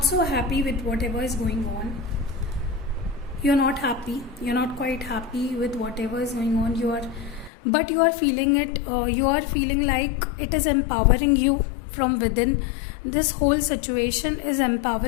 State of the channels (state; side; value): drops out; right; at 7.5 s